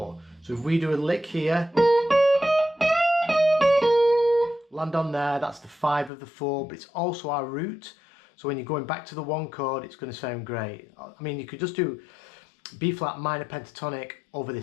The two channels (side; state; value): right; drops out; at 6.1 s